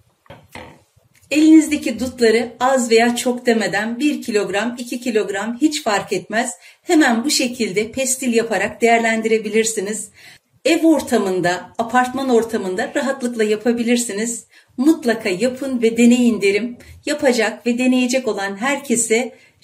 Elinizdeki dutları az veya çok demeden 1 kilogram, 2 kilogram hiç fark etmez. Hemen bu şekilde pestil yaparak değerlendirebilirsiniz. Ev ortamında, apartman ortamında rahatlıkla yapabilirsiniz. Mutlaka yapın ve deneyin derim. Yapacak ve deneyecek olan herkese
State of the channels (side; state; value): both; identical; correlation 1.00